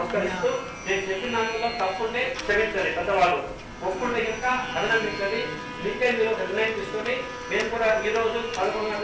నేను చెప్పిన దానిలో తప్పుంటే క్షమించాలి పెద్దవాళ్ళు ఒప్పుంటే ఇంకా అభినందించాలి మీకే మీరు నిర్ణయం తీసుకొని మేము కూడా ఈ రోజు 11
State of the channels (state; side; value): identical; both; correlation 1.00